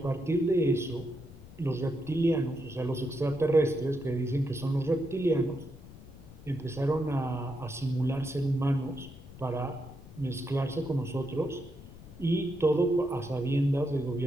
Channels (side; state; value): left; noise; rumble, 18 dB below the sound